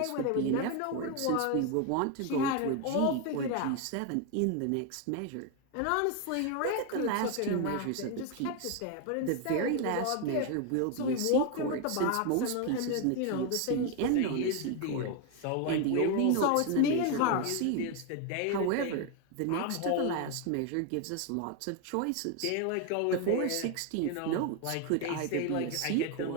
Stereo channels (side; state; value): both; different; correlation 0.01